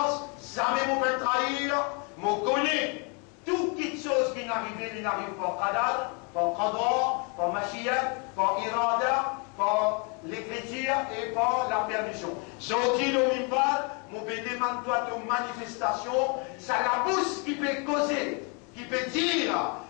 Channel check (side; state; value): right; quieter; 34.6 dB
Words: jamais mon peut trahir, mon connaît. Toute petite chose qui n'arrive, il n'arrive pas qadar, par qadar, par machiyat, par irada, par l'écriture et par la permission. Sorti le mimbal, mon peut demander toi de manifestation, ça la bouche qui peut causer, qui peut dire,